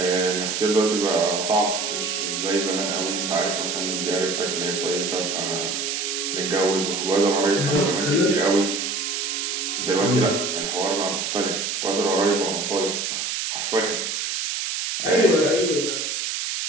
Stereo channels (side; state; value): right; noise; hiss, 2 dB below the sound